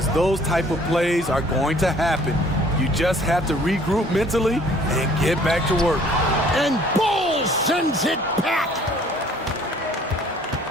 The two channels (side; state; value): both; normal; correlation 0.56